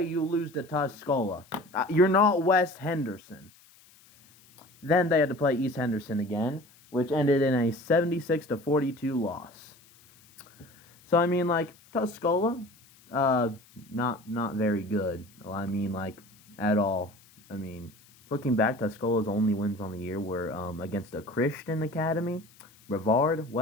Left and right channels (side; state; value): left; noise; hiss, 27 dB below the sound